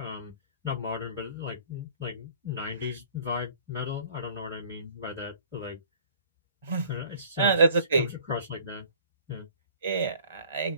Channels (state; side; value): inverted; both; correlation -0.52